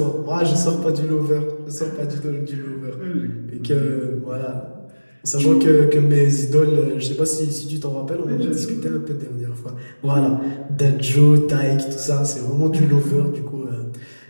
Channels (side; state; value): both; inverted; correlation -1.00